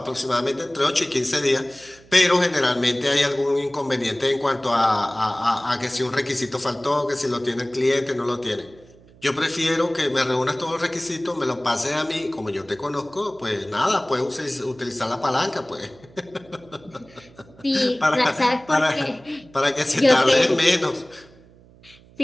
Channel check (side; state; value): right; noise; hum, 25 dB below the sound